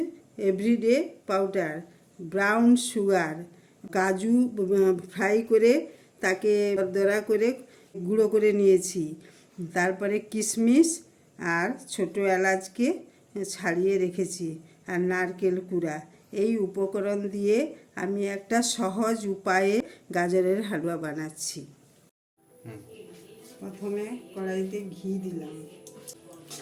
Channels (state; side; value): identical; both; correlation 1.00